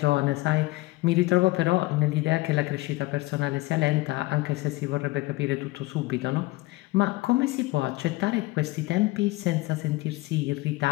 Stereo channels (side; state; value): right; quieter; 20.5 dB